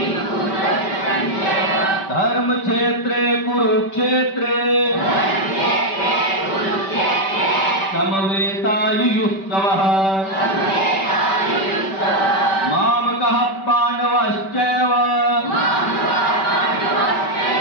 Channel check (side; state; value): right; late; 5.2 ms